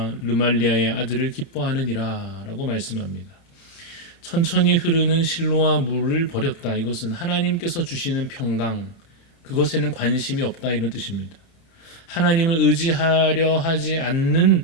르말리아의 아들을 기뻐하느니라 라고 말씀합니다. 천천히 흐르는 실로와 물을 버렸다. 이것은 하나님께서 주시는 평강, 그것에는 관심이 없다 이런 뜻입니다. 하나님을 의지하려 하지 않는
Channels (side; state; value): right; late; 30 ms